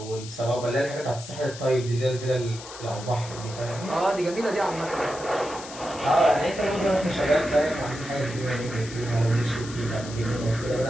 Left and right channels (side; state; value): left; noise; hiss, 14 dB below the sound